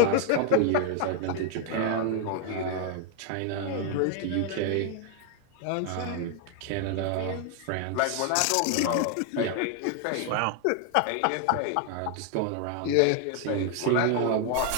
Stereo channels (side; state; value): both; different; correlation 0.00